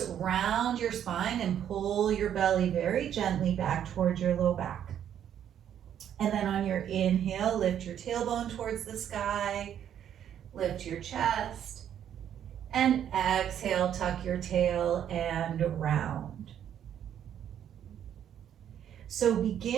round your spine and pull your belly very gently back towards your low back. And then on your inhale, lift your tailbone towards the sky, lift your chest. And exhale, tuck your tail and round. So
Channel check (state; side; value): quieter; left; 9.8 dB